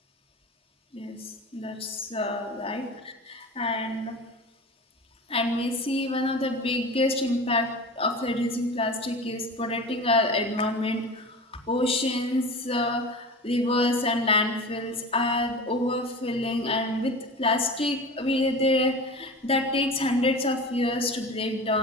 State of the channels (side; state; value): both; normal; correlation 0.33